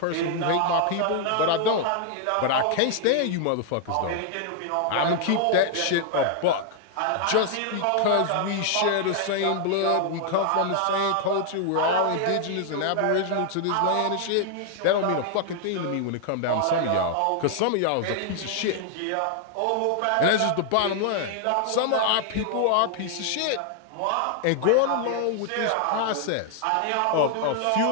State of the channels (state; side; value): different; both; correlation 0.00